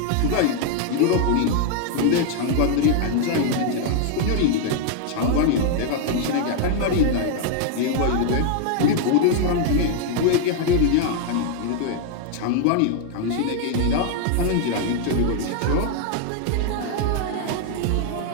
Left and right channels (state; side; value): different; both; correlation 0.00